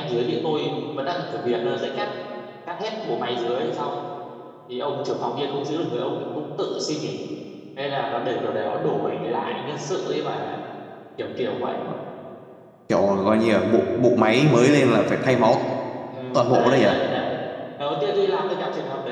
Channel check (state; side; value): identical; both; correlation 1.00